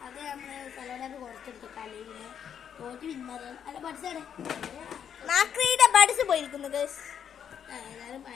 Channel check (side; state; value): right; quieter; 8.4 dB